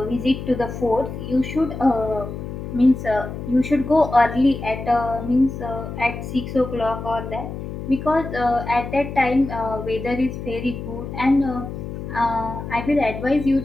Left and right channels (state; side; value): noise; left; hum, 8 dB below the sound